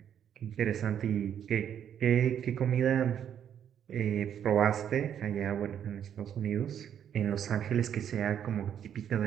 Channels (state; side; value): quieter; left; 9.2 dB